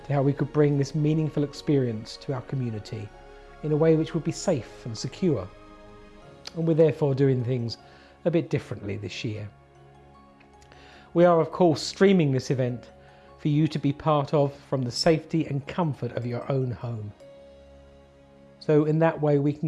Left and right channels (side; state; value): both; identical; correlation 1.00